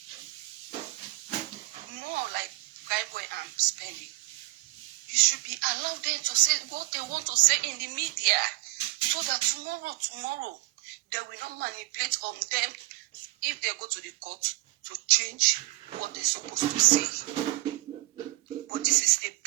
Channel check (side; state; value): left; quieter; 21.1 dB